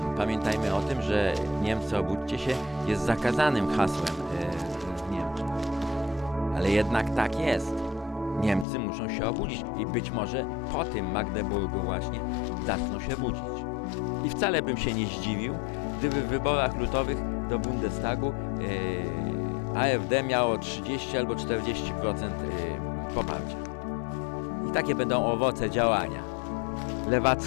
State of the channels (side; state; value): right; drops out; at 8.7 s